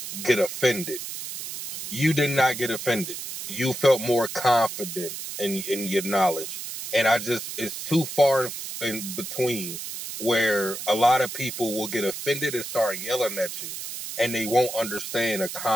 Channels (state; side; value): noise; right; hiss, 7 dB below the sound